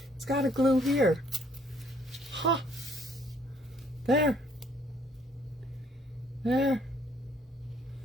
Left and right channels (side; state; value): both; normal; correlation 0.64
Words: It's got to glue here. Huh. There. There.